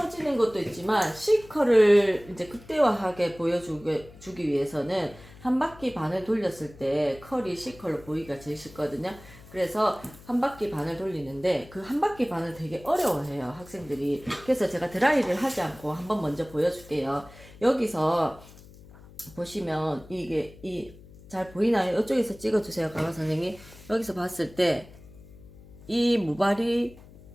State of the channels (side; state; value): left; noise; hum, 21 dB below the sound